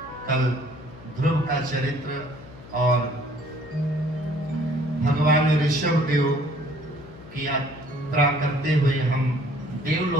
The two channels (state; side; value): noise; left; hum, 18 dB below the sound